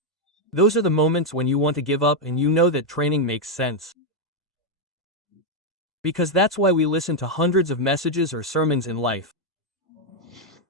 Those are the moments when you want to give up and you know that training makes sense. Because that's why we listen to hundreds of messages or sermons in life.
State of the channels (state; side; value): normal; both; correlation 0.01